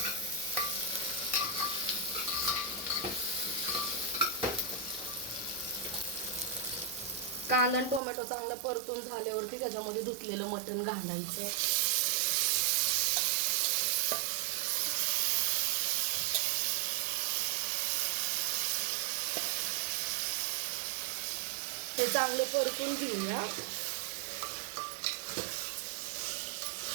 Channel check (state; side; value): drops out; left; at 8.0 s